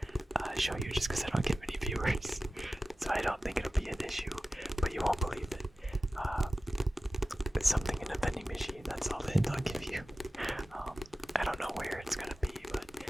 show you just because I don't get many viewers. So I don't think it'll be an issue, but you won't believe it. It's something in a vending machine, that's all the hint I'll give you. I don't know where it's gonna be, but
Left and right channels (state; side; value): normal; both; correlation 0.95